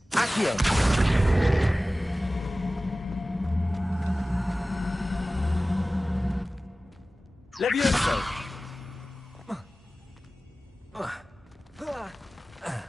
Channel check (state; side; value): normal; both; correlation 0.97